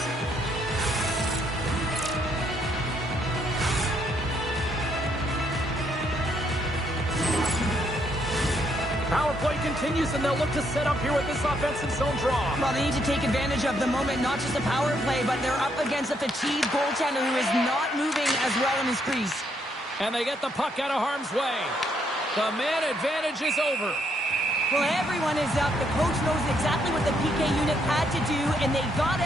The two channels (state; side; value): normal; both; correlation 0.73